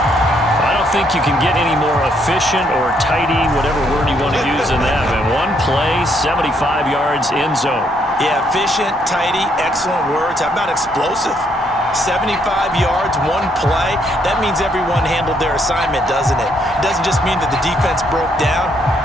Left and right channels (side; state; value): both; normal; correlation 0.72